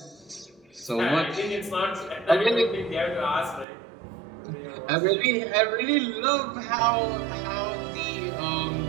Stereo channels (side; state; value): left; drops out; at 3.7 s